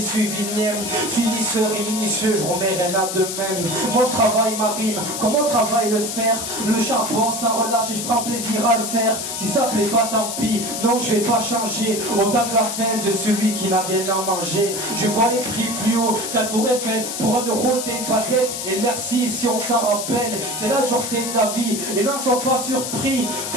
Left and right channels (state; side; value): noise; left; hiss, 5 dB below the sound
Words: le mien. Finisseur et minutieux, je remets rien à de même. Moi je travaille ma rime, comment travaille le fer? Le charbon ça relâche et je prends plaisir à le faire. Si ça plaît pas tant pis, non je vais pas changer. Autant que la fin de celui qui n'a rien à manger. Je vois les prix plus haut qu'à Tour Eiffel. Pour 1 euro t'es une baguette et merci si on s'en rappelle. C'est la dureté de la vie et n'en sois pas surpris.